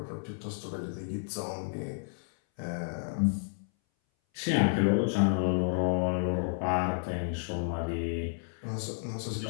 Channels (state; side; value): silent; right; 57 dB below the other